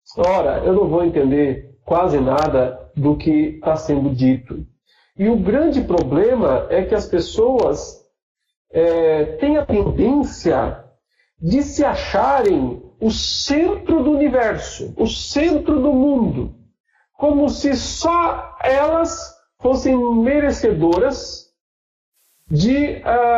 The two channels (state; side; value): identical; both; correlation 1.00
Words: ora, eu não vou entender quase nada do que está sendo dito. E o grande problema é que as pessoas têm a tendência de se acharem o centro do universo, o centro do mundo, como se só elas fossem merecedoras de